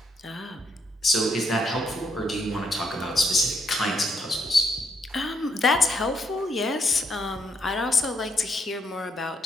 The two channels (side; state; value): both; normal; correlation 0.74